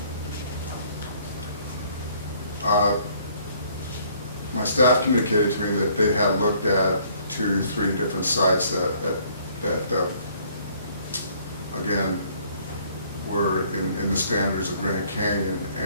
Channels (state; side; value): inverted; both; correlation -0.61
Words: My staff communicated to me that they had looked at 2, 3 different sites that again, were in the standards of Grand Canyon,